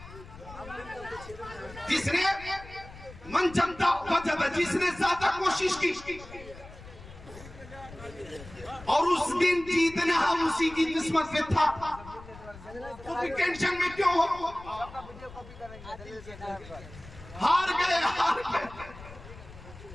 جس نے من جمتا وجب، جس نے زیادہ کوشش کی، اور اس دن جیتنا ہم اسی کی قسمت میں تھا، تو بھی ٹینشن میں کیوں ہو؟ ہار گئے، ہار گئے۔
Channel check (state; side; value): noise; left; rumble, 17 dB below the sound